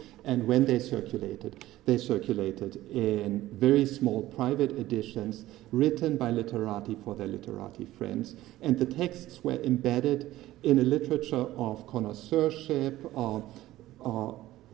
and when they circulated in very small private editions written by literati for their literati friends, and the texts were embedded in a literature of connoisseurship,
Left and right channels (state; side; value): quieter; left; 15.7 dB